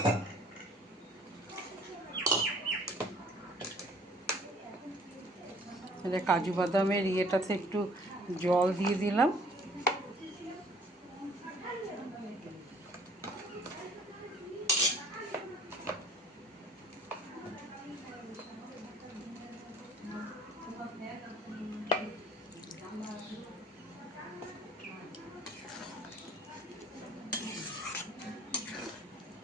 কাজু বাদামের ইয়েটাতে একটু জল দিয়ে দিলাম।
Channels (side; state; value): both; normal; correlation 0.56